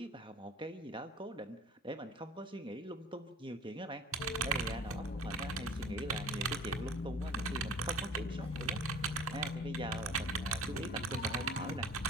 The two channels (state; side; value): normal; both; correlation 0.47